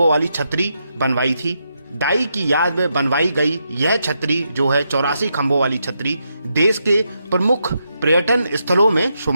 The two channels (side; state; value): both; inverted; correlation -0.82